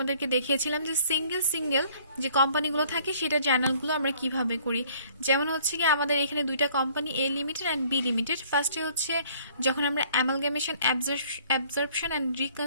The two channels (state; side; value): inverted; both; correlation -0.57